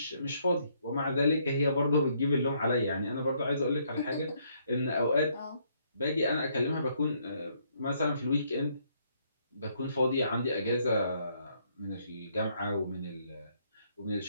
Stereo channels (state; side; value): inverted; both; correlation -0.70